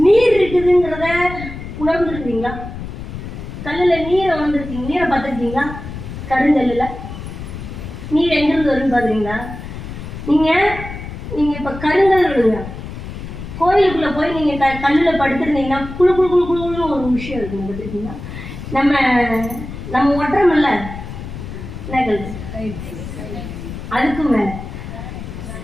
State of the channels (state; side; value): noise; left; rumble, 10 dB below the sound